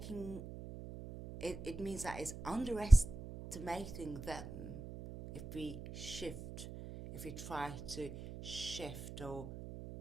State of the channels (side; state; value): right; noise; hum, 11 dB below the sound